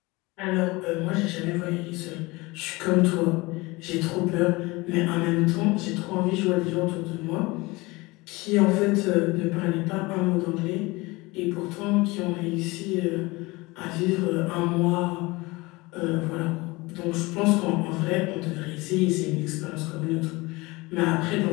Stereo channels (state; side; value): quieter; right; 23.0 dB